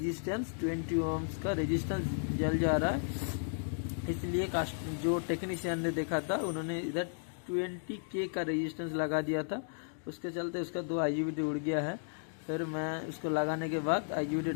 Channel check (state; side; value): silent; right; digital silence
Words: 20 ओम्स का रेजिस्टेंस जल जा रहा है, इसलिए जो टेक्नीशियन ने देखा था उन्होंने इधर 20K का रेजिस्टेंस लगा दिया था। उसके चलते उसका 2 IGBT उड़ गया है। फिर मैं उसको लगाने के बाद IGBT